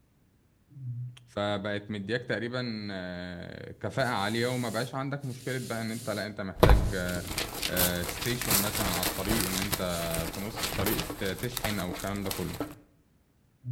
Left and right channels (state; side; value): identical; both; correlation 1.00